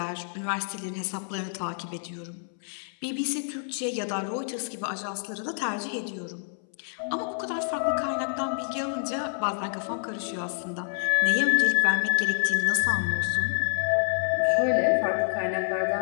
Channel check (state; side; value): silent; right; 60 dB below the other